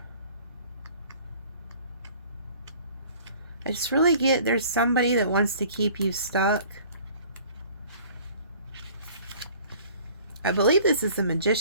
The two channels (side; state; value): both; inverted; correlation -0.51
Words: I just really get there's somebody that wants to keep you stuck. I believe this is the